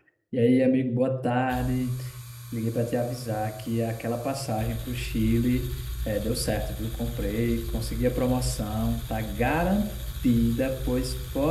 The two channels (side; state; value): both; identical; correlation 1.00